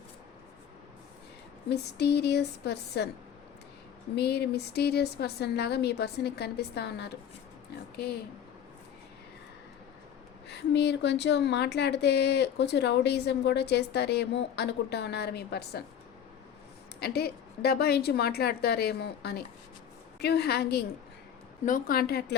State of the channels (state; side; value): quieter; right; 8.9 dB